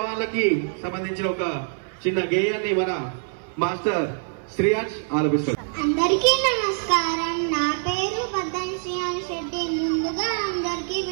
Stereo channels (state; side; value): silent; left; 59 dB below the other